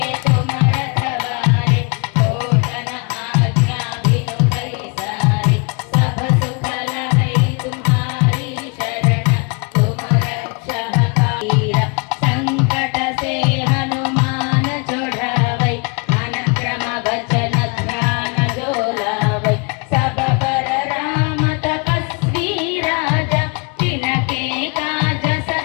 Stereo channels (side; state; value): right; quieter; 33.7 dB